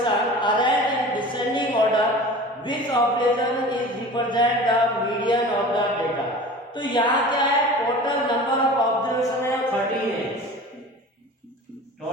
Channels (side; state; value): both; normal; correlation 0.38